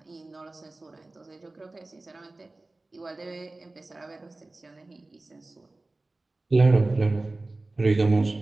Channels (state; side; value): quieter; left; 3.0 dB